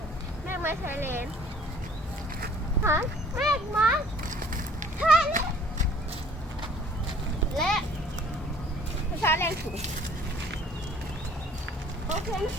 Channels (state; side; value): normal; both; correlation 0.55